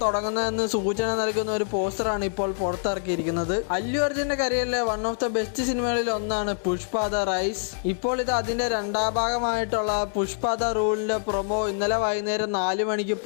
തുടങ്ങുന്നതെന്ന് സൂചന നൽകുന്ന ഒരു പോസ്റ്ററാണ് ഇപ്പോൾ പുറത്തിറക്കിയിരിക്കുന്നത്. അല്ലു അർജുന്റെ കരിയറിലെ വൺ ഓഫ് ദ ബെസ്റ്റ് സിനിമകളിൽ ഒന്നാണ് പുഷ്പ ദ റൈസ്. ഇപ്പോൾ ഇത് അതിന്റെ രണ്ടാം ഭാഗമായിട്ടുള്ള പുഷ്പ ദ റൂളിന്റെ പ്രൊമോ ഇന്നലെ വൈകുന്നേരം 4 മണിക്ക്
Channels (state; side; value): silent; right; 59 dB below the other